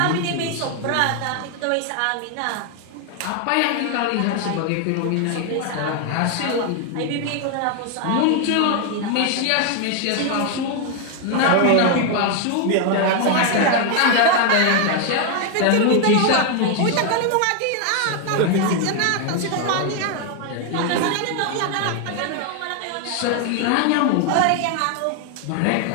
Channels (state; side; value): different; both; correlation 0.00